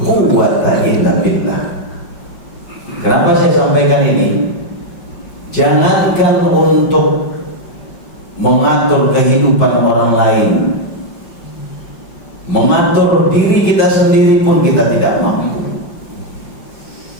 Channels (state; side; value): late; right; 5.4 ms